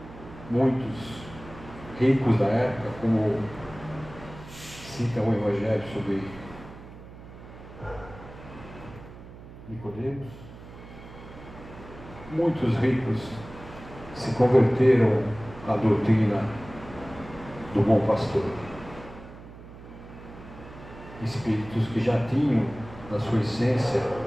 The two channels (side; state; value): right; noise; hum, 16 dB below the sound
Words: Muitos ricos da época, como cita o Evangelho sobre Nicodemos, muitos ricos se converteram à doutrina do bom pastor. Espíritos que já tinham na sua essência